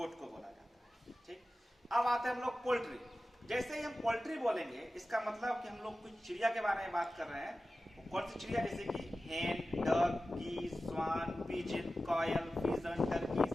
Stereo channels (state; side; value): normal; both; correlation 0.95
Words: को बोला जाता है. ठीक. अब आते हैं हम लोग पोल्ट्री. जैसे ही हम पोल्ट्री बोलेंगे इसका मतलब कि हम लोग कुछ चिड़िया के बारे में बात कर रहे हैं. कौन सी चिड़िया? जैसे कि hen, duck, geese, swan, pigeon, koel, pigeon,